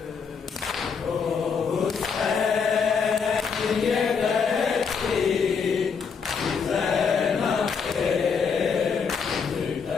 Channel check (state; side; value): quieter; right; 5.9 dB